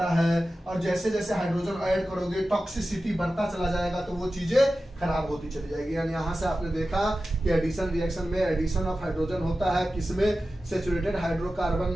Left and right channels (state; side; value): normal; both; correlation 0.94